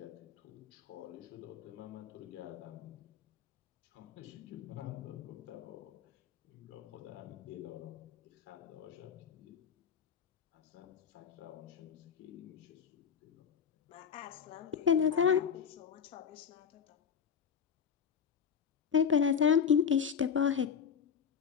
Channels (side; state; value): right; quieter; 7.2 dB